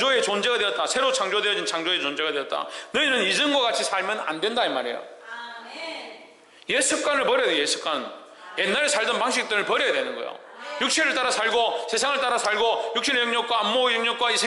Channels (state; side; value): identical; both; correlation 1.00